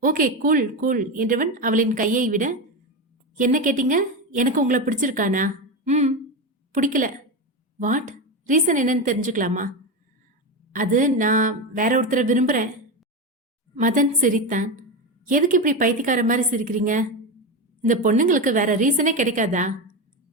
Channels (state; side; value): normal; both; correlation 0.16